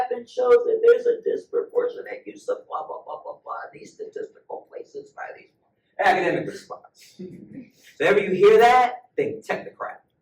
shows that there's a disproportionate use of blah blah blah blah blah. These statistical places by these academic response. So ever you hear that, think technocrat,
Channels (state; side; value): identical; both; correlation 1.00